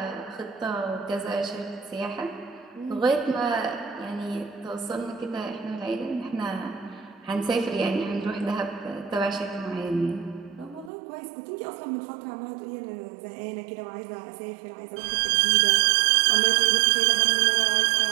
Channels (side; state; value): left; drops out; at 10.9 s